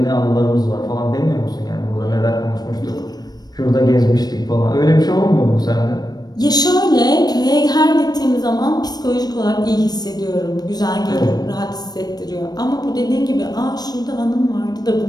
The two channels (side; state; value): right; late; 0.19 ms